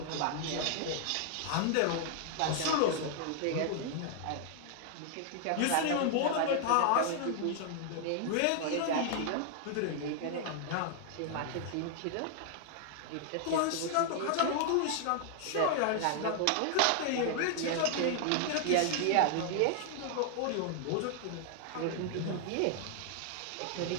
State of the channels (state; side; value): different; both; correlation 0.00